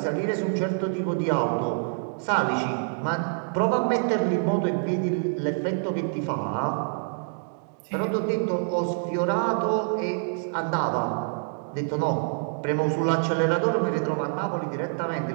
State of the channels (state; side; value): silent; left; 61 dB below the other